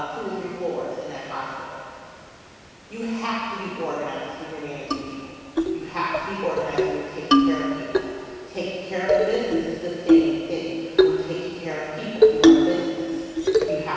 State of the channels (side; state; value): both; identical; correlation 1.00